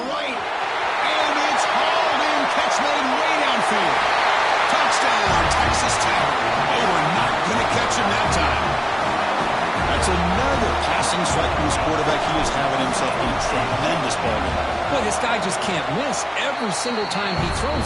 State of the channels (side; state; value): both; identical; correlation 1.00